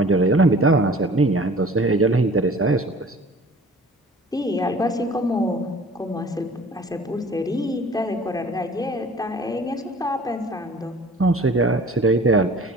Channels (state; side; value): normal; both; correlation 0.47